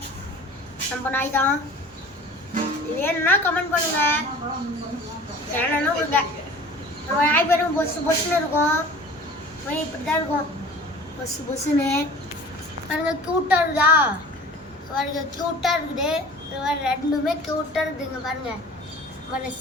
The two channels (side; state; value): both; normal; correlation 0.44